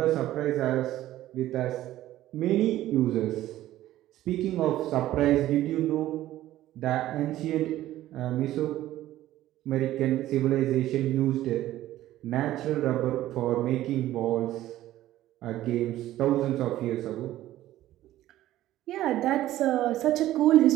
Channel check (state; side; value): quieter; left; 14.3 dB